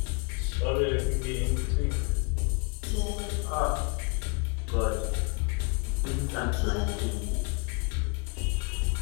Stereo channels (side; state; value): right; quieter; 32.7 dB